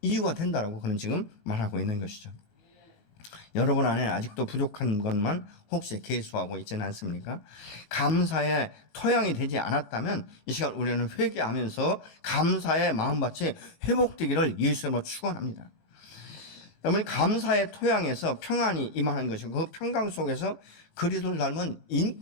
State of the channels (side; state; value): right; late; 17 ms